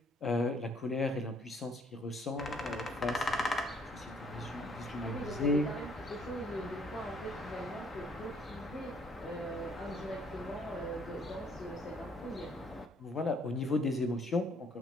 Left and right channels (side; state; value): both; normal; correlation 0.64